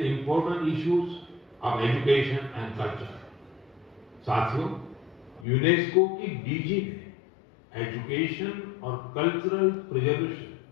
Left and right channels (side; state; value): right; drops out; at 5.5 s